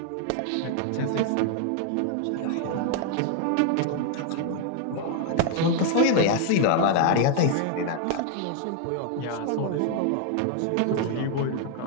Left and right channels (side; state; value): both; different; correlation 0.00